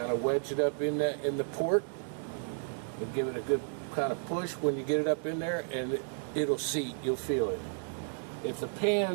of wedge it up in the port and give it a good kind of push when you get it up in there, and it'll seat. You'll feel it. If the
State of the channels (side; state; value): left; silent; digital silence